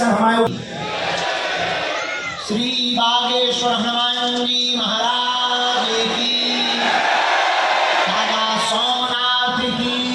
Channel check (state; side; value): identical; both; correlation 1.00